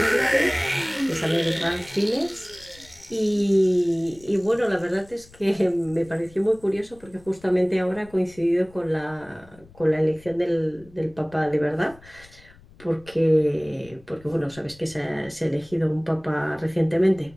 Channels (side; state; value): left; noise; rumble, 24 dB below the sound